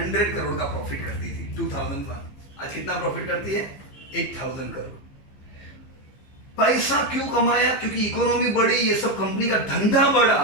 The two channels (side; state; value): right; late; 15 ms